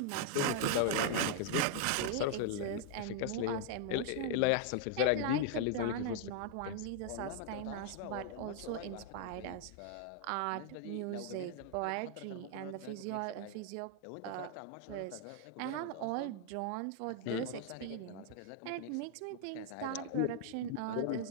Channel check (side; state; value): both; different; correlation 0.00